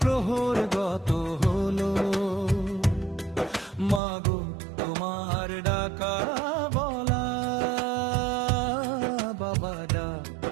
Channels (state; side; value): drops out; left; at 4.0 s